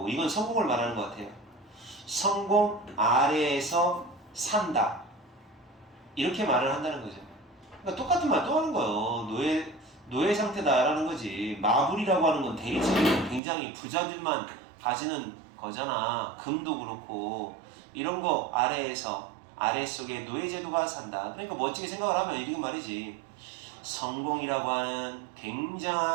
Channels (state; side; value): drops out; left; at 13.4 s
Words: 이건 성공을 말하는 것 같아요. 성공 아래에서 산다, 이렇게 말을 한다는 거죠. 그러니까 똑같은 말 또 하는 거예요. 노예 상태다라는 거지. 마블이라고 하는 건 대리석이 굉장히 부자들만 가지는 거잖아. 금도 그렇고 이런 거 아래속에 노예제도가 산다. 그러니까 멋지게 생각을 하면 이렇게 말이지. 성공이라고 하는